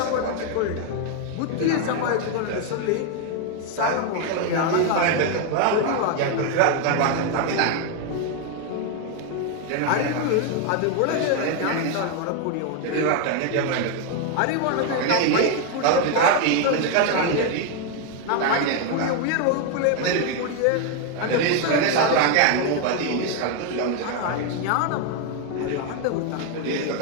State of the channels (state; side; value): different; both; correlation 0.01